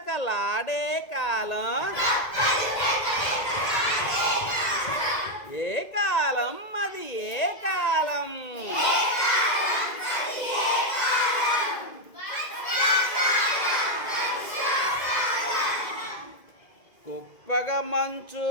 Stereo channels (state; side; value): late; right; 2.0 ms